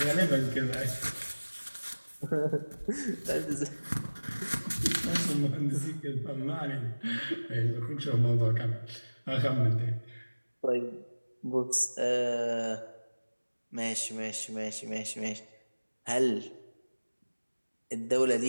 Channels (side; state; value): both; inverted; correlation -1.00